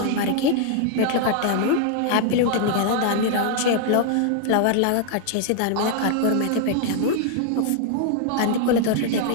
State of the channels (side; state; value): both; different; correlation 0.00